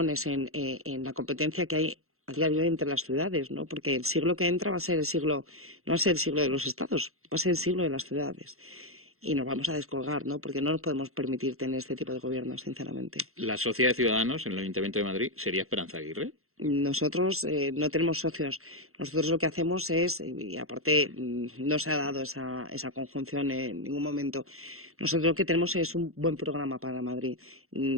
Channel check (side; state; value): left; late; 0.63 ms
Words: en la competencia que hay a día de hoy entre las ciudades, ¿no? Porque el siglo que entra va a ser no va a ser el siglo de los estados, va a ser el siglo de las ciudades. Y nos vamos a descolgar, ¿no? Porque no nos podemos permitir tener este tipo de gobierno, sinceramente. ¿La socia de Ciudadanos en el Ayuntamiento de Madrid sería Esperanza Aguirre? Nosotros no tenemos socios. Nosotros lo que hacemos es, y aparte no se ha dado esa conjunción en ningún momento, nosotros lo que tenemos es un buen programa para Madrid.